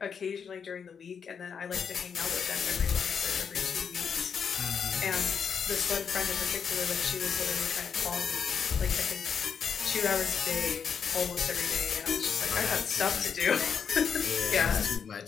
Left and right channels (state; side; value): quieter; right; 6.8 dB